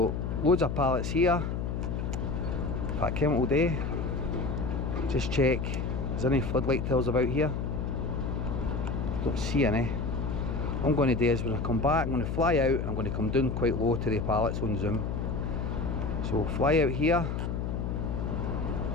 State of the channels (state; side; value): noise; left; hum, 2 dB below the sound